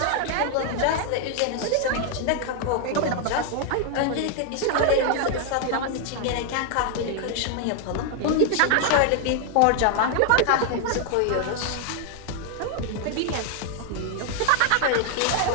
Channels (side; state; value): both; different; correlation 0.00